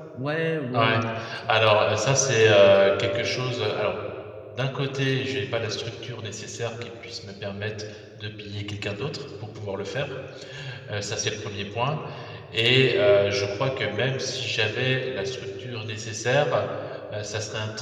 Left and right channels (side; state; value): both; identical; correlation 1.00